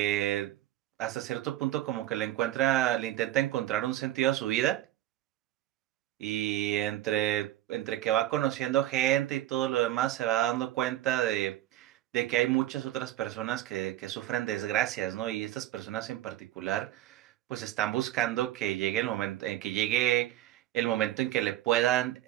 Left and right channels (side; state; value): left; quieter; 13.9 dB